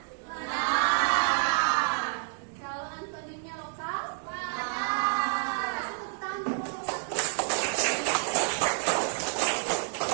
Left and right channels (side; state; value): left; silent; 58 dB below the other